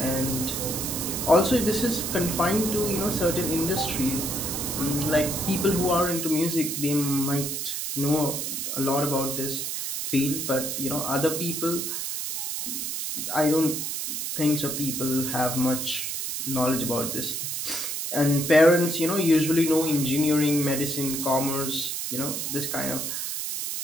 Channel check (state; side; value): noise; right; hiss, 3 dB below the sound